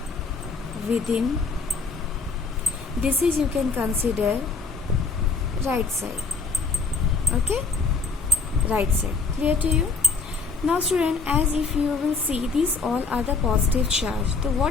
within. This is you can consider right side. Okay, right side. Clear to you? Now student, as if you will see, these all are the positive charge. So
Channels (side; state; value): right; quieter; 4.5 dB